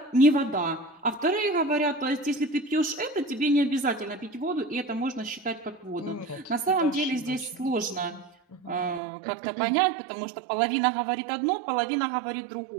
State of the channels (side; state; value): left; drops out; at 9.0 s